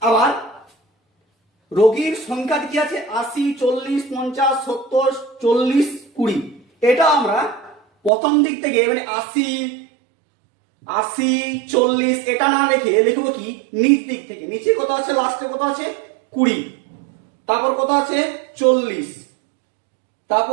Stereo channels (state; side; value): drops out; left; at 8.1 s